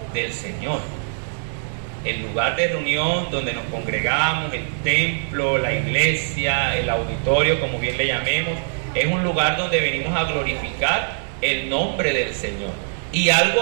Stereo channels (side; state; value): left; silent; digital silence